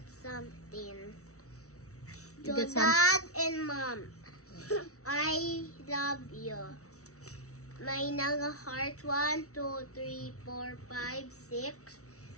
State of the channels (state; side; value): late; right; 0.64 ms